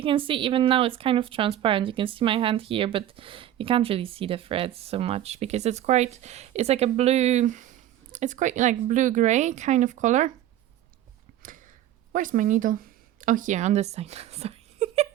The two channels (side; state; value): left; quieter; 12.2 dB